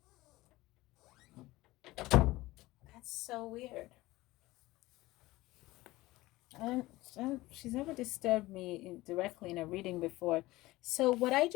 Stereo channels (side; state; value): right; quieter; 18.8 dB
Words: That's so weird. She's never disturbed me directly in a reading before. So what I